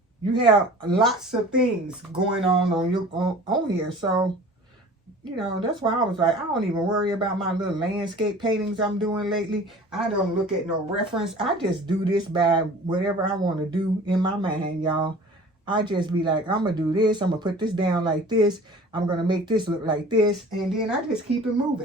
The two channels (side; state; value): both; normal; correlation 0.44